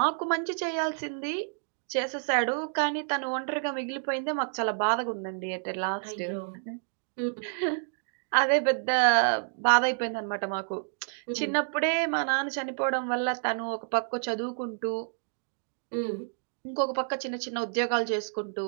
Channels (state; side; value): silent; left; digital silence